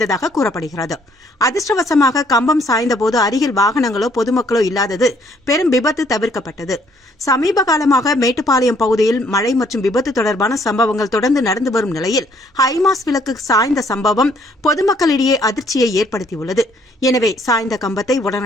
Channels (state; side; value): normal; both; correlation 0.65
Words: கூறப்படுகிறது. அதிர்ஷ்டவசமாக கம்பம் சாய்ந்தபோது அருகில் வாகனங்களோ பொதுமக்களோ இல்லாதது பெரும் விபத்து தவிர்க்கப்பட்டது. சமீப காலமாக மேட்டுப்பாளையம் பகுதியில் மழை மற்றும் விபத்து தொடர்பான சம்பவங்கள் தொடர்ந்து நடந்து வரும் நிலையில் ஹைமாஸ் விளக்கு சாய்ந்த சம்பவம் பொதுமக்களிடையே அதிர்ச்சியை ஏற்படுத்தியுள்ளது. எனவே சாய்ந்த கம்பத்தை